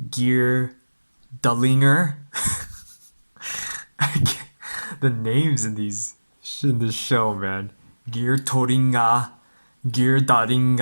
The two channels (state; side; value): inverted; both; correlation -1.00